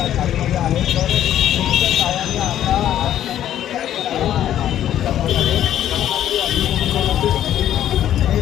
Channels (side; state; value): right; quieter; 11.3 dB